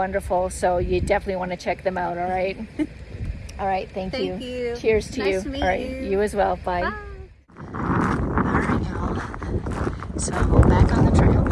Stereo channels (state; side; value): identical; both; correlation 1.00